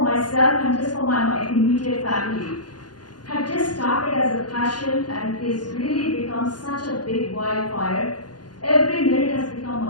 myself and just for my immediate family had just started as a passion and is really become such a big wildfire. Every minute has become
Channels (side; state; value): right; late; 0.70 ms